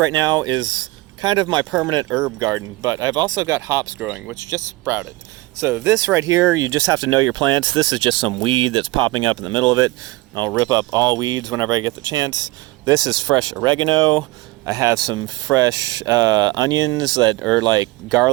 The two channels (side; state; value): left; quieter; 20.5 dB